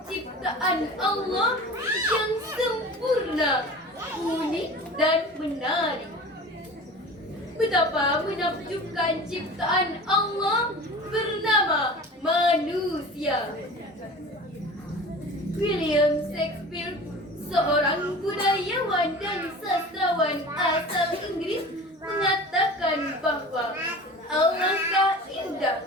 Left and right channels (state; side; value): normal; both; correlation 0.38